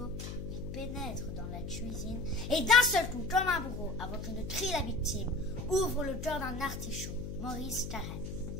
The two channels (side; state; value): left; noise; hum, 7 dB below the sound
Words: il pénètre dans la cuisine et d'un seul coup, comme un bourreau, avant que ne crie la victime, ouvre le cœur d'un artichaut. Maurice Carême.